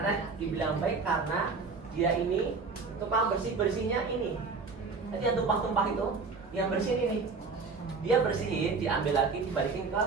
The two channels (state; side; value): quieter; left; 4.5 dB